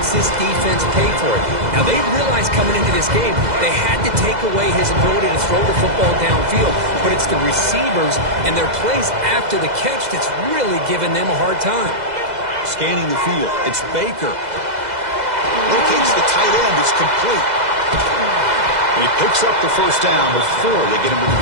this defense pay for it. Now, they realized coming into this game they had to take away his ability to throw the football downfield, but it's the receivers and their plays after the catch that's really giving them a hard time. Scanning the field, it's Baker. Locates the tight end, it's complete. And he picks up the first down before they get him to the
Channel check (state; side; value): late; left; 2.0 ms